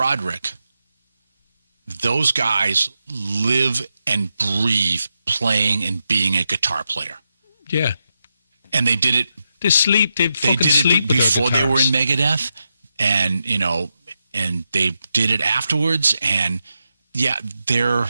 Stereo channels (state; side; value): inverted; both; correlation -0.86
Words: those guys live and breathe playing and being a guitar player. Yeah. And they did it. They did it before they were in Megadeth, and and they did it afterwards. And yeah, and